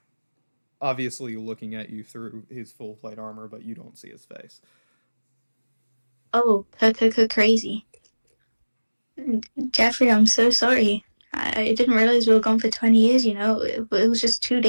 obviously looking at you through his full plate armor, but you don't see his face. Oh, crazy. Jeffrey, I'm so sorry. I didn't realize we were gone for 20 years, you know. It was just 2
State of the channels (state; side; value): inverted; both; correlation -1.00